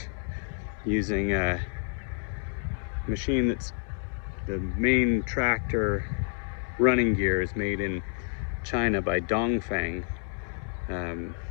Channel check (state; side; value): silent; right; 59 dB below the other